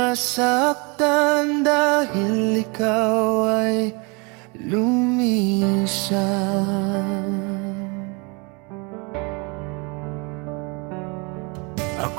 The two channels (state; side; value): quieter; left; 30.6 dB